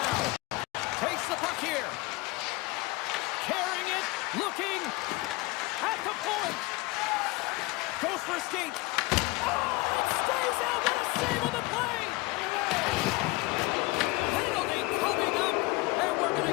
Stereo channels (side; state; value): right; quieter; 22.6 dB